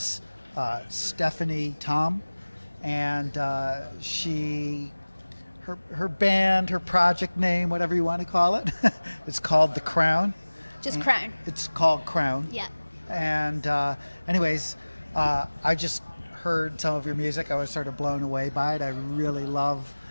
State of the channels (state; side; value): inverted; both; correlation -1.00